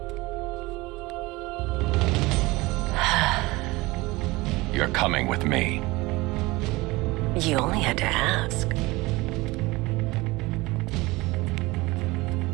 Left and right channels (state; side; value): quieter; left; 21.8 dB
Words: You're coming with me. You only had to ask.